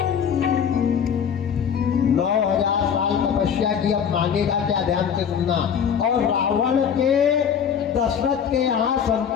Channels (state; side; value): quieter; right; 7.7 dB